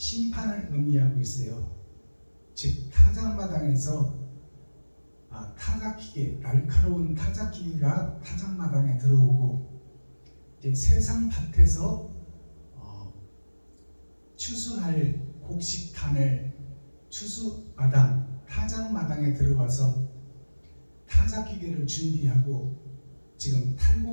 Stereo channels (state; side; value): inverted; both; correlation -1.00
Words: 의미하고 있어요. 즉 타작마당에서 타작기계, 날카로운 타작기계가 타작마당에 들어오고 이제 세상 밭에서 추수할 곡식탄을 추수마당, 타작마당에 들어와서 타작기계를 준비하고 지금